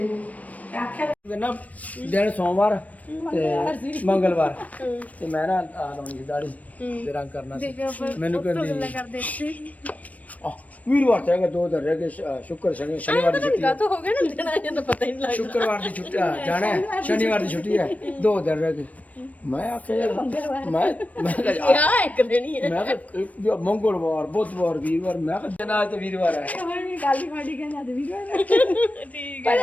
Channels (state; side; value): late; right; 0.070 ms